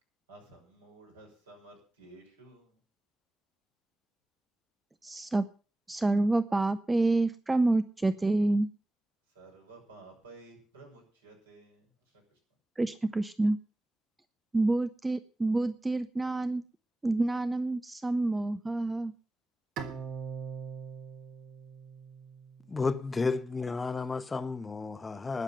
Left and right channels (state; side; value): normal; both; correlation 0.96